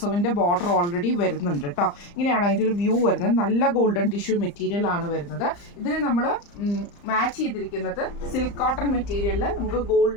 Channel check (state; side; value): late; right; 35 ms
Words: ബോർഡർ ഓൾറെഡി വരുന്നുണ്ട് കേട്ടോ. ഇങ്ങനെയാണ് അതിൻ്റെ ഒരു വ്യൂ വരുന്നത്. നല്ല ഗോൾഡൻ ടിഷ്യൂ മെറ്റീരിയൽ ആണ് വരുന്നത്. ഇതിന് നമ്മൾ മാച്ച് ചെയ്തിരിക്കുന്നത് സിൽക്ക് കോട്ടൺ മെറ്റീരിയലിൽ നമുക്ക്